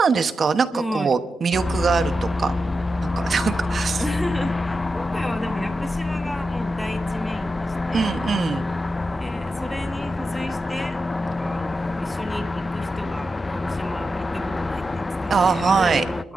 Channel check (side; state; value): both; normal; correlation 0.89